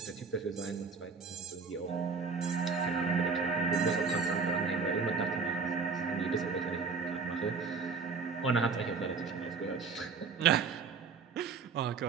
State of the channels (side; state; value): left; quieter; 5.0 dB